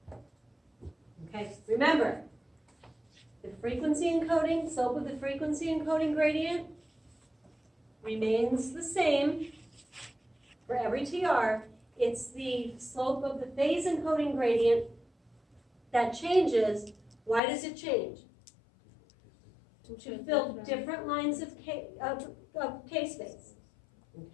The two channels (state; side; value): drops out; right; at 17.4 s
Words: Okay, remember, the frequency encoding, slope of the frequency encoding gradient remains the same for every TR. It's the slope of the phase encoding gradient that changes. Why does it change? To fill different lines of K-space,